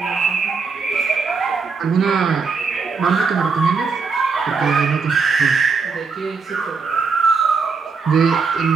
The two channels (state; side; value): quieter; left; 5.0 dB